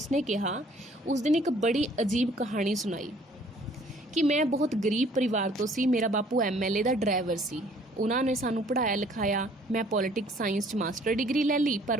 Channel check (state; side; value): normal; both; correlation 0.58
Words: ਕਿਹਾ, ਉਸ ਦਿਨ ਇੱਕ ਬੜੀ ਅਜੀਬ ਕਹਾਣੀ ਸੁਣਾਈ ਕਿ ਮੈਂ ਬਹੁਤ ਗਰੀਬ ਪਰਿਵਾਰ ਤੋਂ ਸੀ। ਮੇਰਾ ਬਾਪੂ MLA ਦਾ ਡਰਾਈਵਰ ਸੀ। ਉਹਨਾਂ ਨੇ ਸਾਨੂੰ ਪੜ੍ਹਾਇਆ ਲਿਖਾਇਆ। ਮੈਂ ਪੋਲੀਟਿਕਸ ਸਾਇੰਸ 'ਚ ਮਾਸਟਰ ਡਿਗਰੀ ਲੈ ਲਈ, ਪਰ